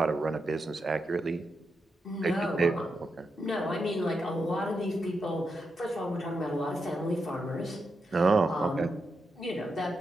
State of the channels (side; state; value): both; normal; correlation 0.85